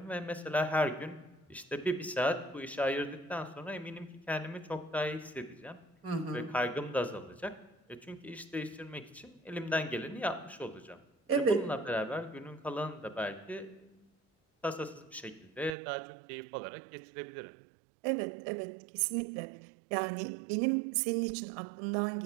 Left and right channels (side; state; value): left; drops out; at 15.8 s